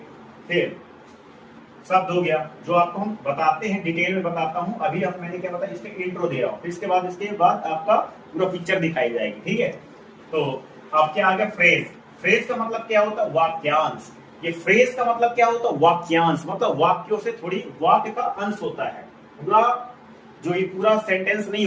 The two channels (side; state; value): both; identical; correlation 1.00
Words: फिर शब्द हो गया जो आपको हम बताते हैं, डिटेल में बताता हूं। अभी अब मैंने क्या बताया, इसमें इंट्रो दे रहा हूं, फिर इसके बाद आपका पूरा पिक्चर दिखाई जाएगी। ठीक है, तो अब क्या आ गया, फ्रेज। फ्रेज का मतलब क्या होता है, वाक्यांश। ये फ्रेज का मतलब क्या होता है, वाक्यांश, मतलब वाक्यों से थोड़ी वाक्य का अंश होता है। पूरा जो ये पूरा सेंटेंस नहीं